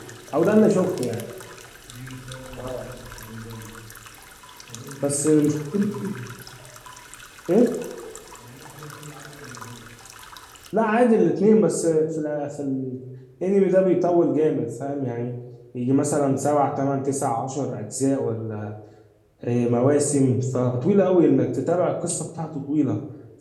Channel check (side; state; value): both; identical; correlation 1.00